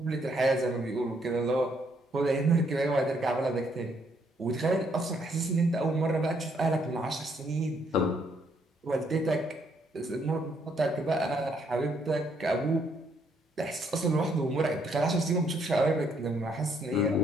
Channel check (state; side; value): normal; both; correlation 0.71